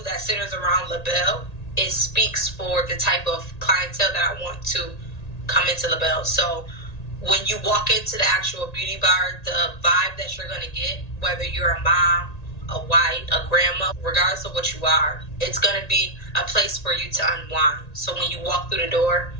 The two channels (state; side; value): late; right; 1.9 ms